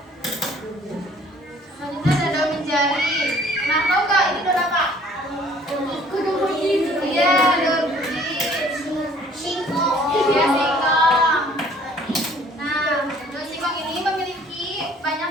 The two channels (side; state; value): both; normal; correlation 0.56